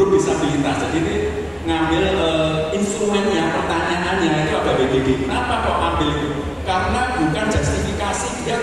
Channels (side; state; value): both; identical; correlation 1.00